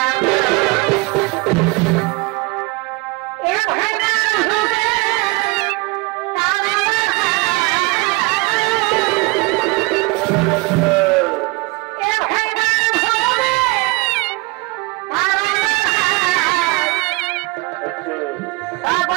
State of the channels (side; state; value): left; quieter; 25.4 dB